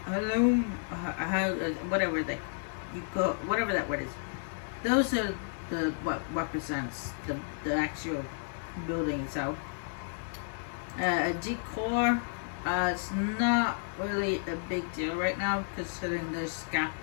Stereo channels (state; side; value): silent; right; digital silence